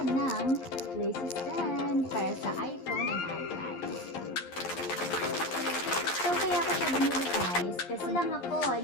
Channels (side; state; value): right; late; 11 ms